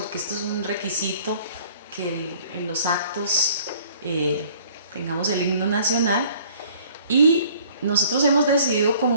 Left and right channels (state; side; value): inverted; both; correlation -0.55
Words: esto es un requisito que en los actos tengamos el himno nacional. Y nosotros hemos decidido como